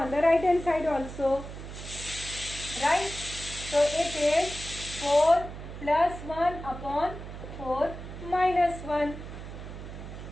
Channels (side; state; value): right; noise; hum, 11 dB below the sound